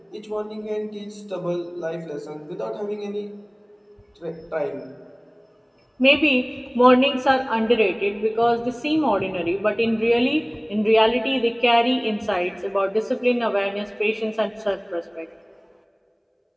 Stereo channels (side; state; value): both; identical; correlation 1.00